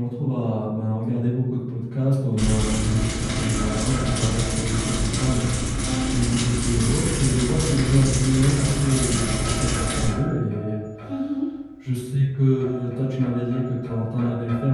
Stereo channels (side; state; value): both; identical; correlation 1.00